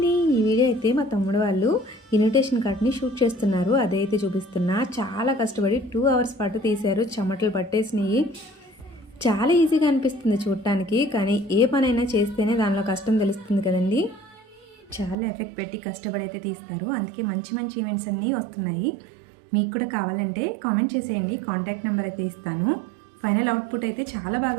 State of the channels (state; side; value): drops out; left; at 15.2 s